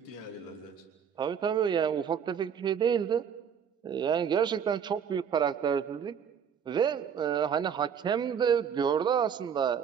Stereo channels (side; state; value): left; quieter; 7.6 dB